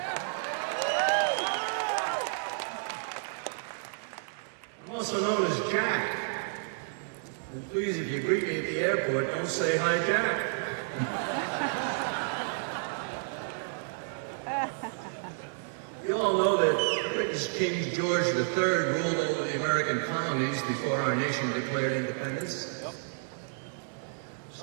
I'm also known as Jack. And please, if you greet me at the airport, don't say hi, Jack. You all know that British King George III ruled over the American colonies before our nation declared independence.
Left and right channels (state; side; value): silent; left; digital silence